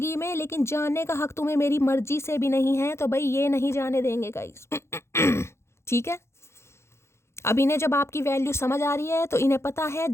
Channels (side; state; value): right; late; 0.13 ms